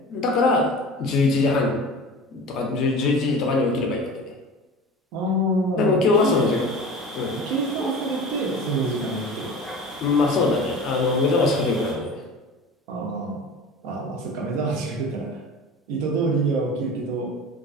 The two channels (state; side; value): normal; both; correlation 0.37